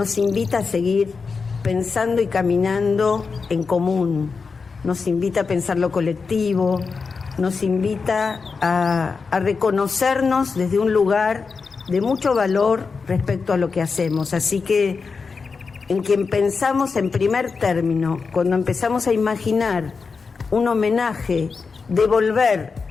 invita a seguir pensando y caminando en común, nos invita a pensar lo colectivo, nos invita a reconocernos desde un lugar de mucho valor respecto a lo que hacemos. Así que en quien pensamos en primer término, cuando empezamos a imaginar un homenaje, devolver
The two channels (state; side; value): quieter; right; 4.9 dB